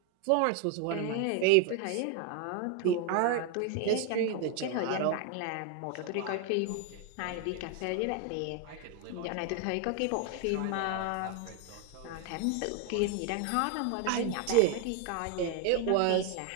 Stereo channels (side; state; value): both; different; correlation 0.01